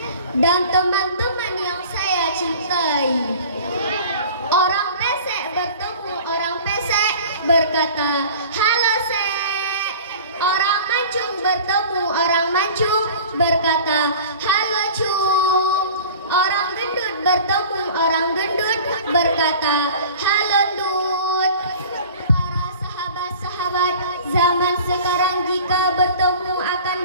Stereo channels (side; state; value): both; inverted; correlation -0.42